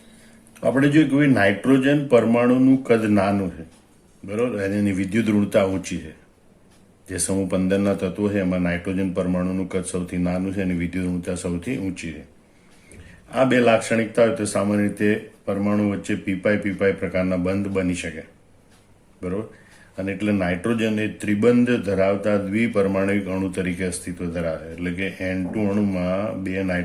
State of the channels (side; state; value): both; identical; correlation 1.00